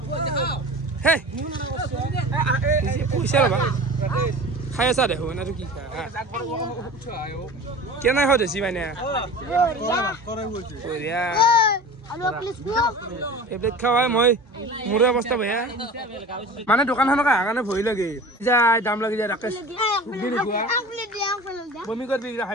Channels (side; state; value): both; normal; correlation 0.37